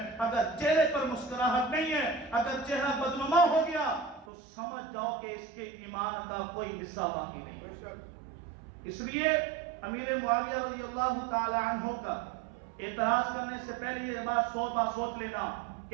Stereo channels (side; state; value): left; drops out; at 4.2 s